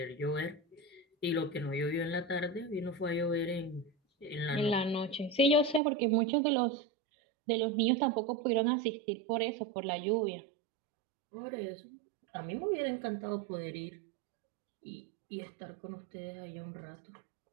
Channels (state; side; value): drops out; left; at 5.8 s